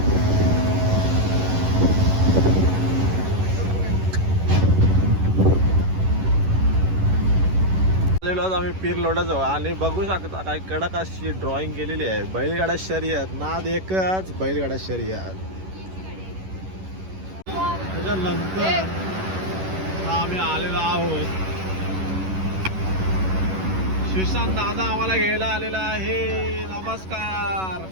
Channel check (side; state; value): left; late; 11 ms